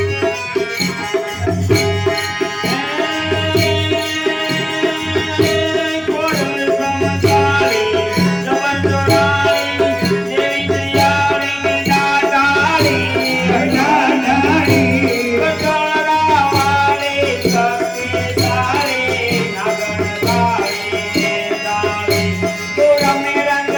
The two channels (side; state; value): both; identical; correlation 1.00